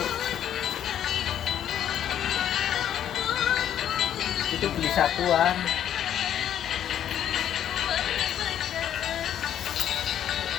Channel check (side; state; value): right; quieter; 10.3 dB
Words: Itu beli satuan.